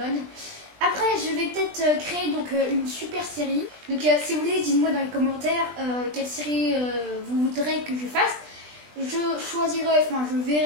Après, je vais peut-être créer une super série. Donc, si vous voulez, dites-moi dans les commentaires quelle série vous voudrez que je fasse. Je choisirai, je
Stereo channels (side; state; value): left; late; 20 ms